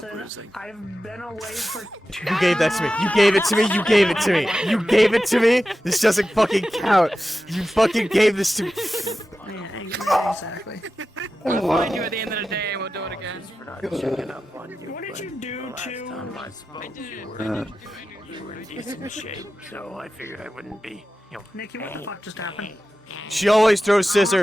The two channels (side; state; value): both; normal; correlation 0.93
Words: losing. I've been away for... You gave that to me. You gave it to me. You gave it to me. You gave it to me. This doesn't fucking count. You fucking gave this to me. Yeah, exactly. We'll find you at the end of the day and we'll do it again. What did you do to... You were in decent shape, so I figured I wouldn't be, you know... Nikki, what the fuck just happened? She always throws